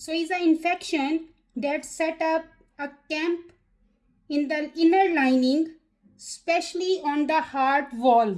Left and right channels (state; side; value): identical; both; correlation 1.00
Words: is an infection that set up a camp in the inner lining, especially on the heart